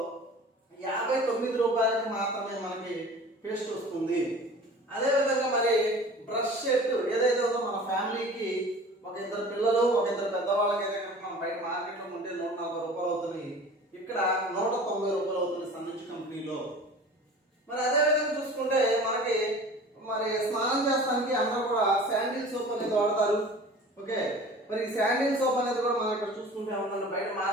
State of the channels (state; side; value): normal; both; correlation 0.41